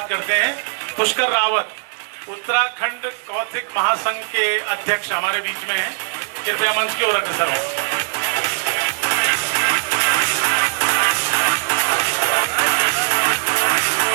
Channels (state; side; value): silent; left; 59 dB below the other